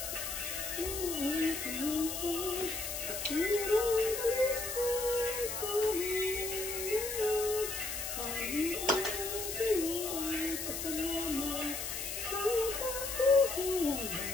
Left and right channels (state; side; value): noise; left; hiss, 4 dB below the sound